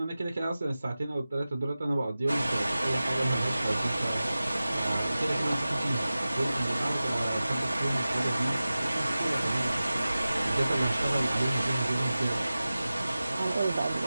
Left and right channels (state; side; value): inverted; both; correlation -0.96